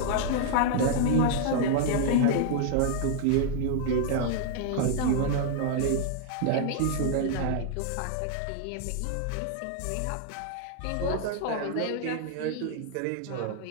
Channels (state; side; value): different; both; correlation -0.01